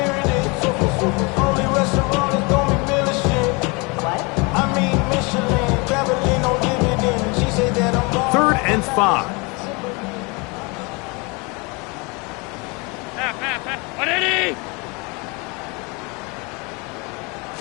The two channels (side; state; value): right; quieter; 28.6 dB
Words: Third and 5.